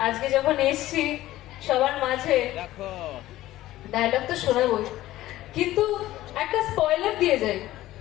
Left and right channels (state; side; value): quieter; right; 15.5 dB